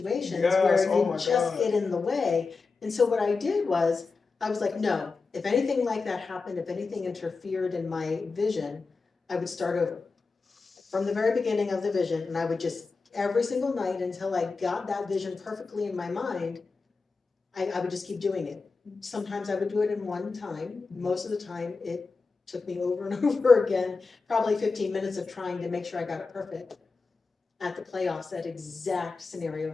where you just get in the way. And so what I did was, I was like, no, if anything like that happened, if anything interfered in my vision, I would start over from the very beginning of the vision. And I would just, every single night until I got that vision perfectly in my mind, I would just keep doing it. Sometimes I would do it in one time. Most of the time it took me over and over again, probably 15 minutes of trying to make sure I got it perfect. At the playoffs, that exact scenario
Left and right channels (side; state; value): right; quieter; 4.3 dB